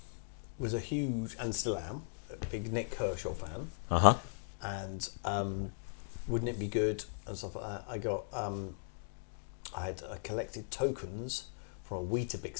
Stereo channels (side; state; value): right; silent; digital silence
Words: was a huge, and still am, a big Nick Kershaw fan. And Wouldn't It Be Good and stuff like that. I collected tokens from a